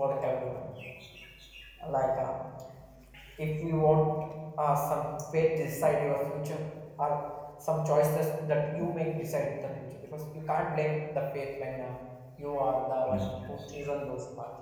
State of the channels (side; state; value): both; identical; correlation 1.00